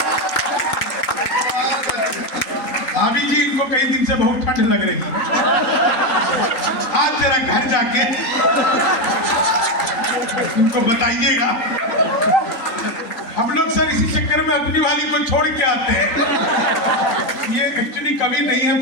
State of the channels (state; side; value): late; right; 3.9 ms